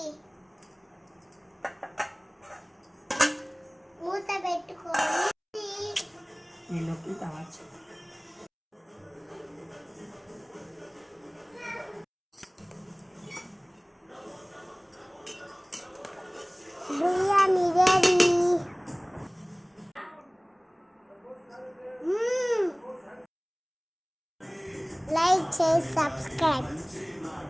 మూత పెట్టుకొని నీళ్ళకి కావచ్చు. బిర్యానీ రెడీ. లైక్ చేసి సబ్స్క్రైబ్.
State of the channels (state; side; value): identical; both; correlation 1.00